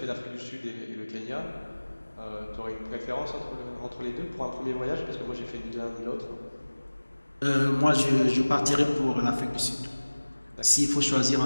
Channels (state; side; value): inverted; both; correlation -1.00